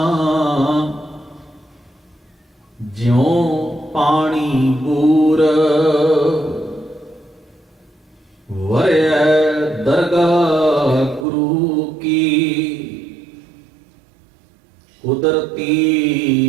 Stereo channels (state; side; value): drops out; left; at 11.2 s